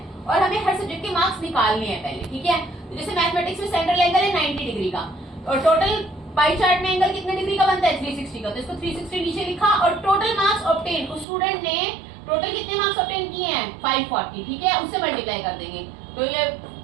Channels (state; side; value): drops out; left; at 11.2 s